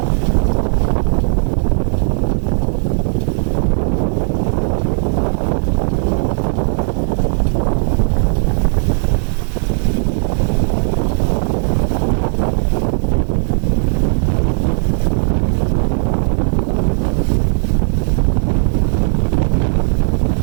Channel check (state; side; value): silent; left; digital silence